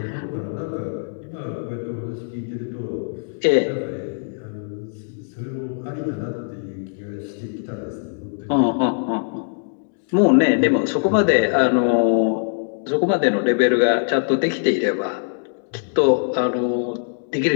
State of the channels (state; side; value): silent; right; 64 dB below the other